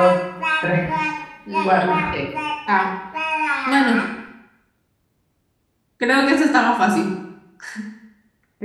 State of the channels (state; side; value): identical; both; correlation 1.00